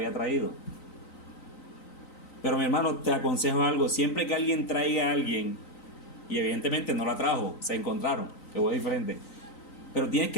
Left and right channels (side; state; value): right; late; 3.9 ms